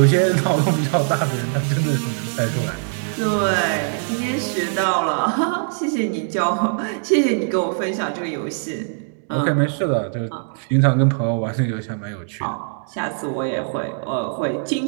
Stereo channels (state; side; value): silent; left; digital silence